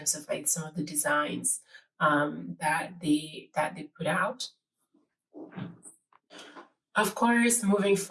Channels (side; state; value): both; identical; correlation 1.00